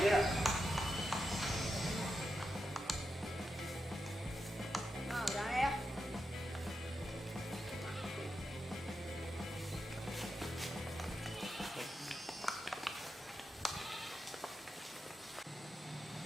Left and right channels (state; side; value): normal; both; correlation 0.88